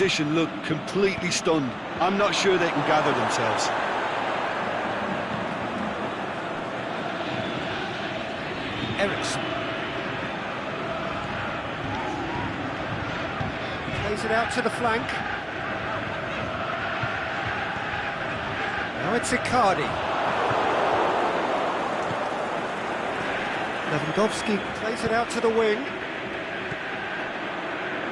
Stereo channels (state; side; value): identical; both; correlation 1.00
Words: looked completely stunned. I'm not sure they can gather themselves. Eriksen. Plays it out to the flank. Now it's Icardi. Lewandowski plays it out to the wing.